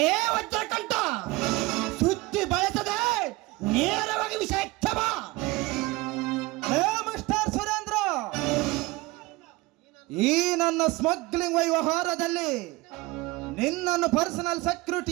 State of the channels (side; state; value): left; quieter; 21.4 dB